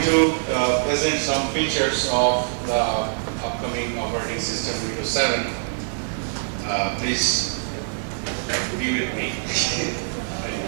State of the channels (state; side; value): silent; left; digital silence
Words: to present some features of the upcoming operating system Windows 7. Please be with me.